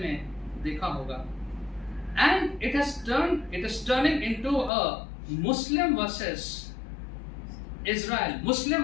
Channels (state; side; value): drops out; right; at 4.7 s